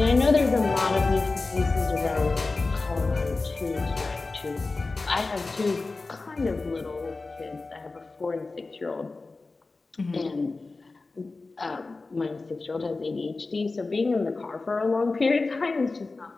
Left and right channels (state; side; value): quieter; right; 3.6 dB